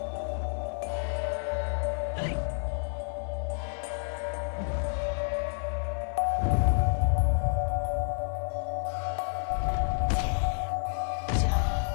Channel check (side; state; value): right; silent; 58 dB below the other